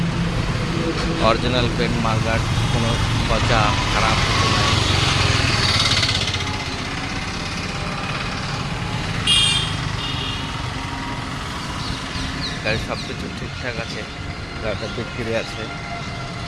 অরিজিনাল পেন্ট মার্কার, কোনো পচা খারাপ কিছু নেই। গাড়ির সব কিছু ঠিকঠাক আছে। গাড়িটা বিক্রি আছে।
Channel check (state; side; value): identical; both; correlation 1.00